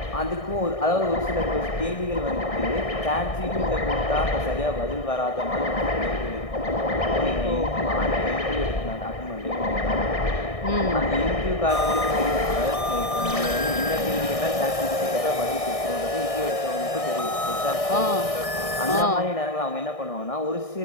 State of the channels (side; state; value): right; late; 1.6 ms